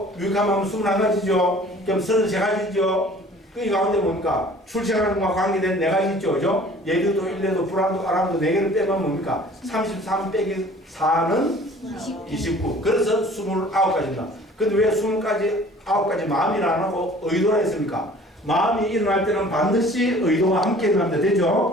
유익한 마음 21가지죠. 그럼 33가지죠. 그 가운데 뭡니까? 출생하는 것과 관계된 4가지 있죠. 그죠? 예류도, 일례도, 불안도, 아람도 4개를 빼면 뭡니까? 33 빼기 4는 29. 그래서 29가지입니다. 근데 왜 29가지 마음이라 안 하고 의도라 했습니까? 마음이 일어날 때는 반드시 의도와 함께 일어납니다.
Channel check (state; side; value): normal; both; correlation 0.50